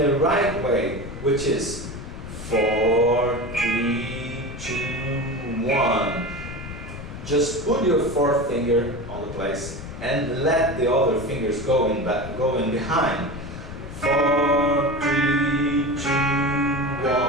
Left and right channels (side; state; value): left; noise; rumble, 10 dB below the sound